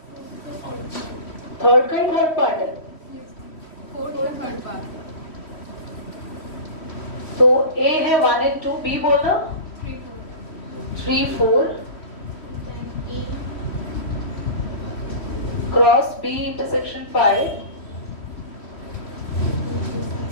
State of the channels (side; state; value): right; late; 3.1 ms